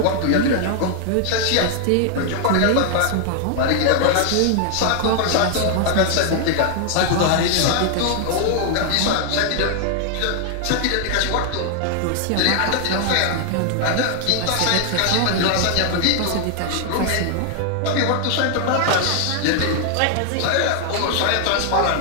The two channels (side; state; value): both; different; correlation 0.00